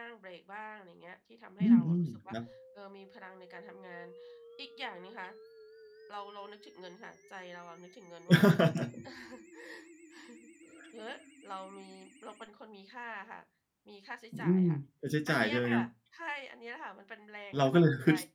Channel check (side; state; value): both; identical; correlation 1.00